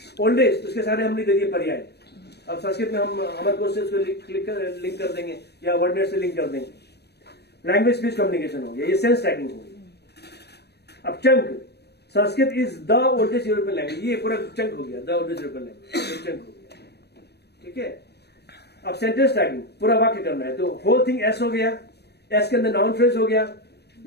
ओल्ड एज उसके सारे हमने दे दिए पर्याय। अब संस्कृत में हम अमर कोश से उसको लिंक कर देंगे या वर्डनेट से लिंक कर देंगे, लैंग्वेज स्पीच कम्युनिकेशन हो गया, ये सेंस टैगिंग हो गई। अब chunk, Sanskrit is the oldest European language, ये पूरा चंक हो गया, the oldest European language chunk हो गया, ठीक है। अब सेंटेंस टैगिंग पूरा वाक्य करना है, तो होल थिंग एस हो गया, एस के अंदर नाउन फ्रेज हो गया,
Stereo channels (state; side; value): late; right; 0.48 ms